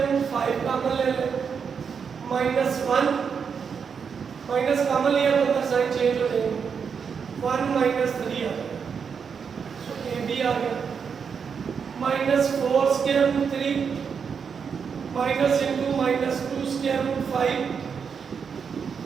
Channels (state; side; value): quieter; left; 6.4 dB